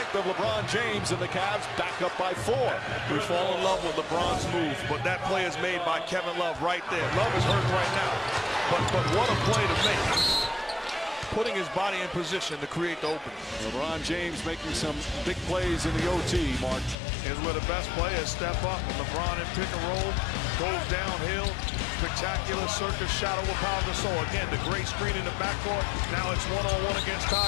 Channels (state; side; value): drops out; right; at 16.9 s